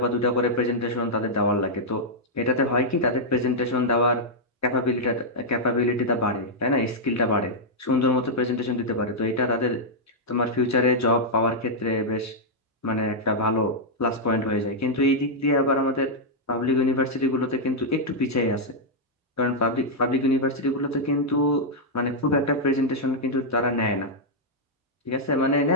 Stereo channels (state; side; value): normal; both; correlation -0.05